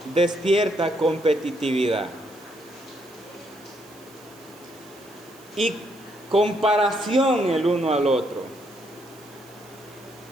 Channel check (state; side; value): noise; right; hiss, 24 dB below the sound